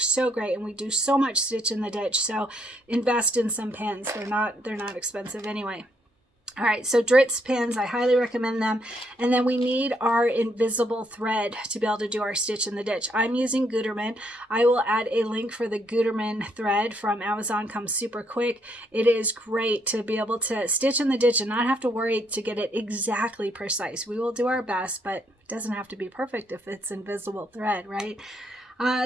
so great, and we do so much stitch in the ditch, so invest in some pins. They're not expensive anyway. All right, so Dritz pins, I highly recommend them. And then we need our invisible thread to be able to do our stitch in the ditch. I'm using Gutermann. I will add a link for the Gutermann thread from Amazon. Comes super quick. It is great to be able to stitch in the ditch and not have to worry to get it exactly precise. We will do our best, but it doesn't have to be perfect if it's invisible thread, right?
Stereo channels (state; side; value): normal; both; correlation 0.73